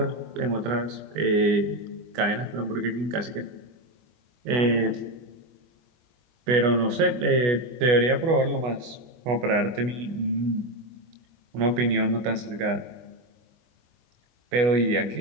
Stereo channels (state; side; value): late; left; 24 ms